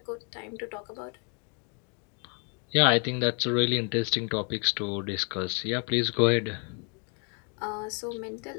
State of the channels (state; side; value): quieter; right; 38.0 dB